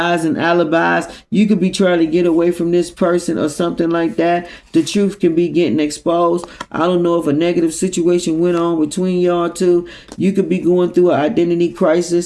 and alibis. You could be trying to get away from this person or something like that. The truth can be getting exposed. I don't know if a negative situation went on between y'all two. You could be going through an identity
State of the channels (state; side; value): identical; both; correlation 1.00